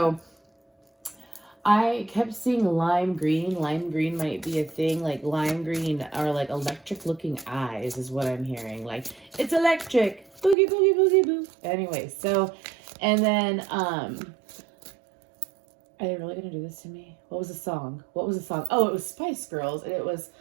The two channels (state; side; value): drops out; left; at 10.6 s